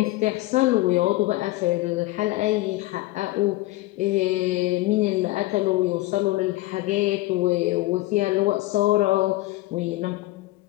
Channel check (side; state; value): right; quieter; 18.7 dB